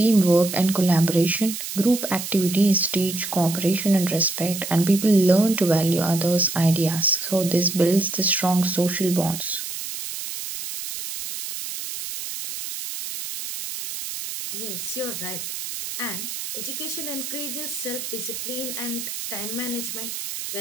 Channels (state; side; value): noise; right; hiss, 7 dB below the sound